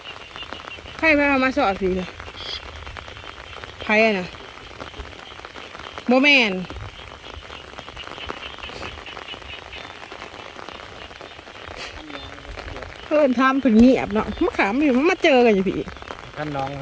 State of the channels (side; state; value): both; identical; correlation 1.00